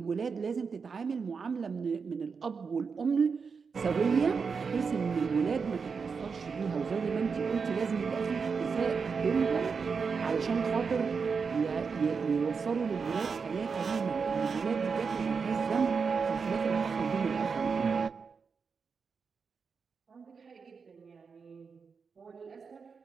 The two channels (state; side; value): quieter; left; 5.4 dB